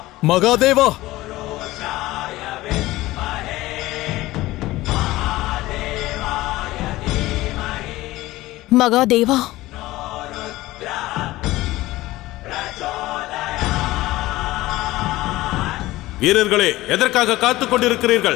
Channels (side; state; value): right; quieter; 17.8 dB